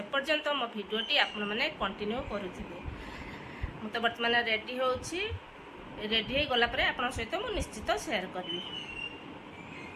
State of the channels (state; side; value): identical; both; correlation 1.00